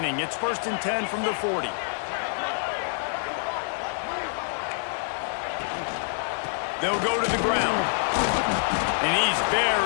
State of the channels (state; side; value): silent; right; digital silence